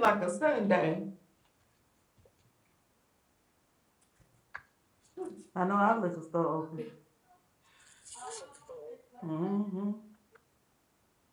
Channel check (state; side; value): identical; both; correlation 1.00